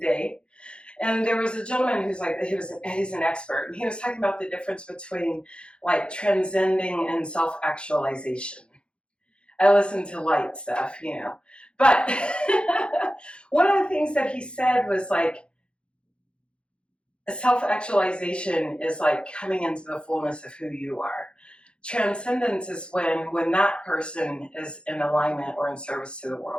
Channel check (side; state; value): right; late; 0.055 ms